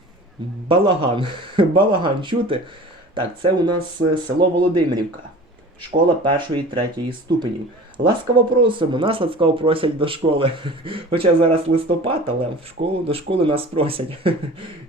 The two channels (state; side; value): normal; both; correlation 0.41